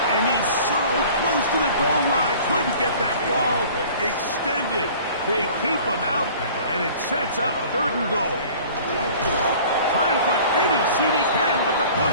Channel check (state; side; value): inverted; both; correlation -0.47